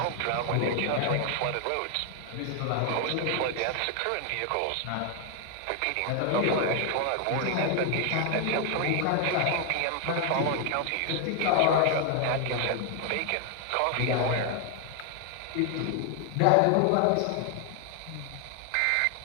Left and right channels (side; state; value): both; different; correlation 0.00